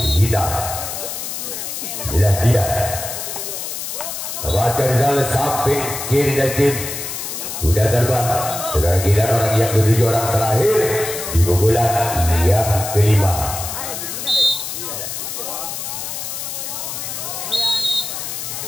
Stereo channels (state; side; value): noise; left; hiss, 6 dB below the sound